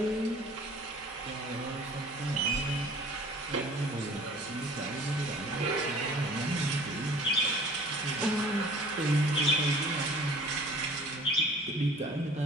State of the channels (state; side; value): noise; right; hum, 28 dB below the sound